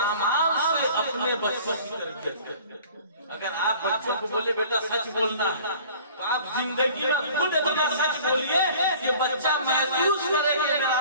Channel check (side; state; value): both; inverted; correlation -0.48